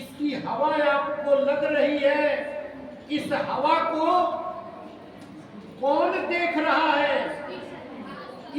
हवा आपको लग रही है, इस हवा को कौन देख रहा है?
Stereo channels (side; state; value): both; identical; correlation 1.00